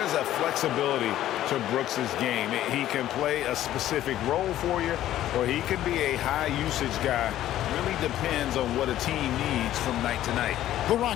a flexibility to Brooks's game. He can play a specific role for you, or he could be a high-usage guy. Really depends on what a team needs from night to night. The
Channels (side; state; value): right; quieter; 13.0 dB